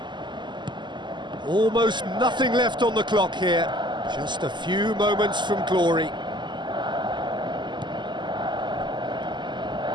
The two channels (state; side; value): late; left; 0.22 ms